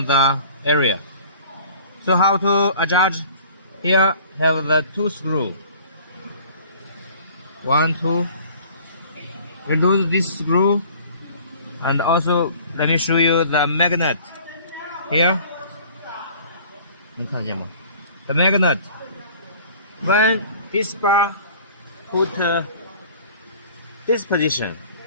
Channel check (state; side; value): inverted; both; correlation -0.49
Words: the area. So how to adjust? Here have the 2 screws. 1, 2. Remove this screw, and also let me show you the magnet. Here, the magnet. When this bar put this position